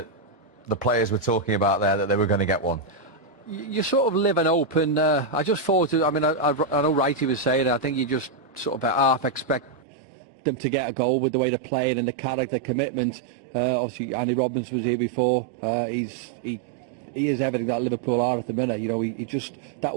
the players were talking about there, that they were going to get one? You sort of live and hope, and I just thought, I mean, I know Wright was saying it, I think you just sort of half expect them to get a goal with the way they're playing and the character commitment. Obviously, Andy Robbins was here before. He is everything that Liverpool are at the minute. You know, he just, that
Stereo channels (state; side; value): drops out; left; at 9.8 s